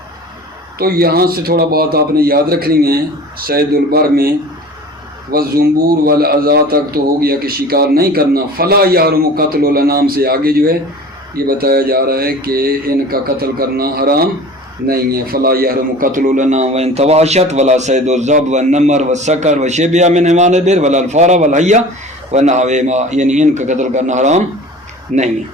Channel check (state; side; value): normal; both; correlation 0.41